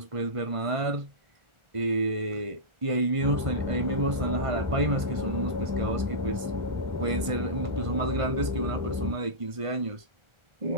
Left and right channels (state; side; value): late; left; 1.5 ms